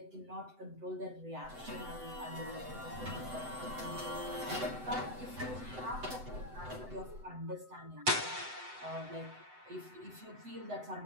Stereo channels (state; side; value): late; left; 7.9 ms